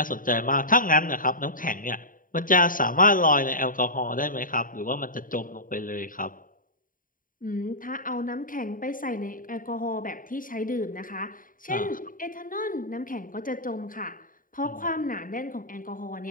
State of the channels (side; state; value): right; late; 0.40 ms